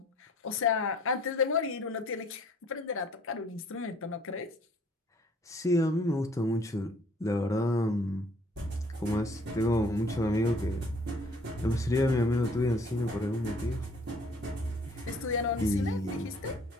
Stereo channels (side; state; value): both; normal; correlation 0.58